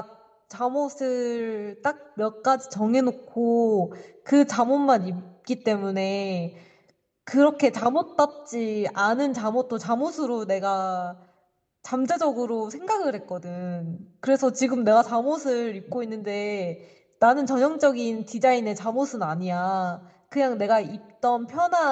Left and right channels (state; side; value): identical; both; correlation 1.00